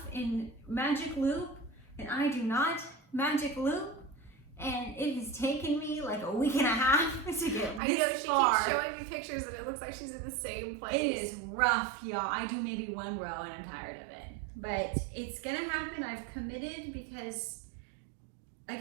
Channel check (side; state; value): left; drops out; at 7.8 s